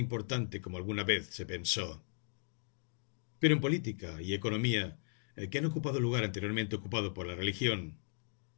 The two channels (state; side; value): silent; right; digital silence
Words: como alguna vez se pensó. Pero en política y economía, que han ocupado el lugar anteriormente ocupado por la religión,